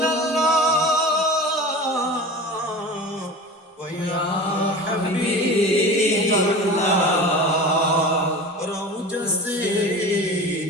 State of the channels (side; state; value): both; normal; correlation 0.34